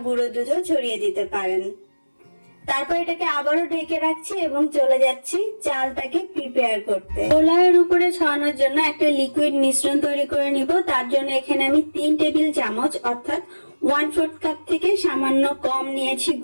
গুঁড়ো দুধও ছড়িয়ে দিতে পারেন। তারপর এটাকে আবারও ঢেকে রাখছি এবং চলে যাচ্ছি চালটাকে প্রিপেয়ার করতে। পোলাওয়ের উপরে ছড়ানোর জন্য একটা লিকুইড মিশ্রণ তৈরি করে নিব। তার জন্য এখানে আমি 3 টেবিল চামচ অর্থাৎ 1/4 কাপ থেকে সামান্য কম নিয়েছি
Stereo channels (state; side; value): inverted; both; correlation -1.00